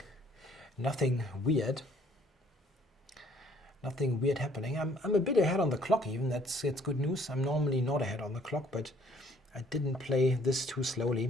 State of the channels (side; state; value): both; normal; correlation 0.61